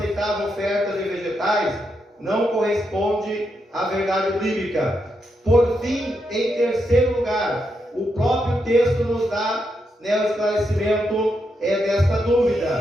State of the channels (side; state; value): both; normal; correlation 0.82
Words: ofertas de vegetais não corresponde à verdade bíblica. Por fim, em terceiro lugar, o próprio texto nos dá o esclarecimento desta